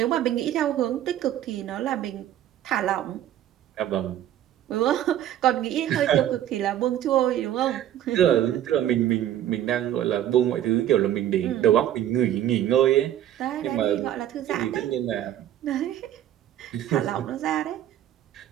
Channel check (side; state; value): left; quieter; 11.6 dB